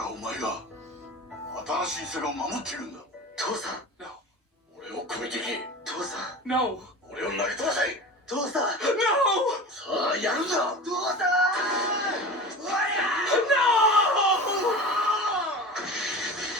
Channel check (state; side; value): normal; both; correlation 0.33